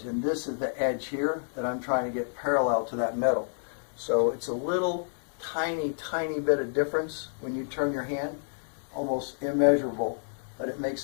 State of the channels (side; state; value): right; silent; digital silence